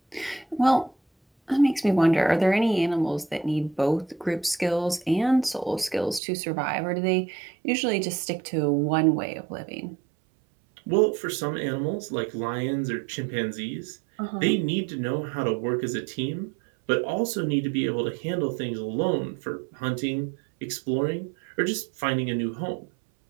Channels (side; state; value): left; drops out; at 6.2 s